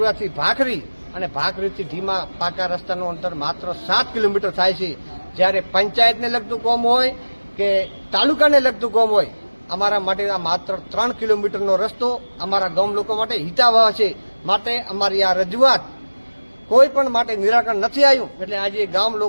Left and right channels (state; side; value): inverted; both; correlation -1.00